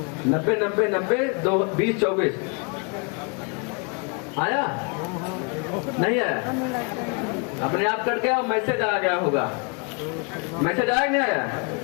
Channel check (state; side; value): quieter; right; 34.1 dB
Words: 90-90-90 20-24 आया? नहीं आया? अपने आप कट गया, मैसेज आ गया होगा। मैसेज आया नहीं आया?